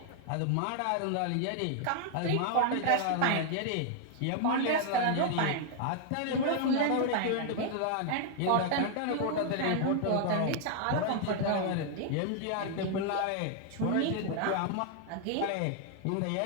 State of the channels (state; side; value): different; both; correlation 0.00